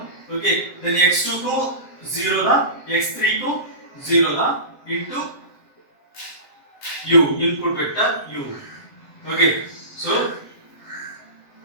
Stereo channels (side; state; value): right; late; 7.6 ms